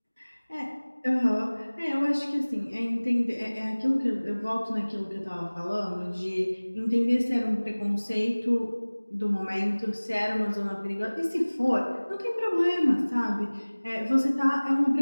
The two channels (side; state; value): both; inverted; correlation -1.00